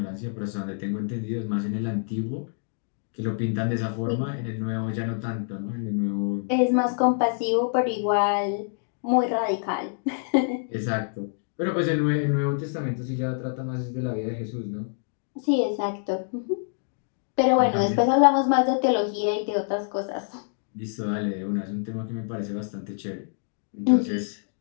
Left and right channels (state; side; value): silent; right; digital silence